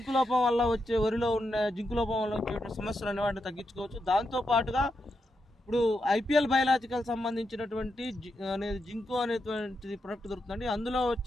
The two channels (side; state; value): both; normal; correlation 0.84